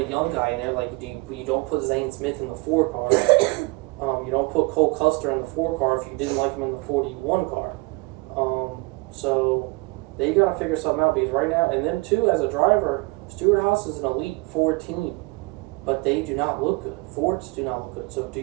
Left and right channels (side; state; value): left; quieter; 26.4 dB